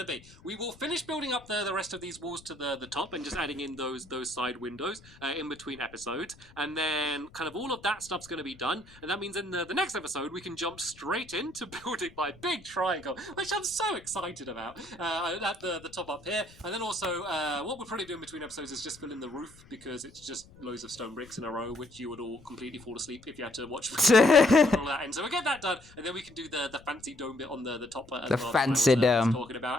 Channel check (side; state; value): left; noise; rumble, 23 dB below the sound